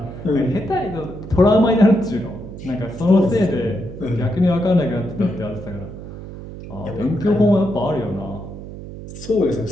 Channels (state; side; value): noise; right; hum, 12 dB below the sound